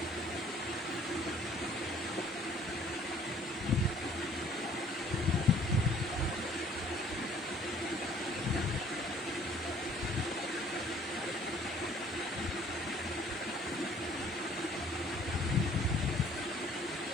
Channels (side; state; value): both; normal; correlation 0.56